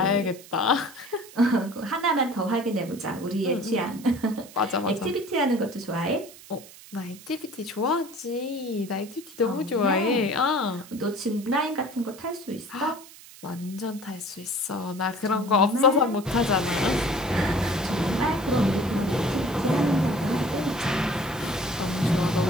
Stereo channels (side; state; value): right; noise; hiss, 19 dB below the sound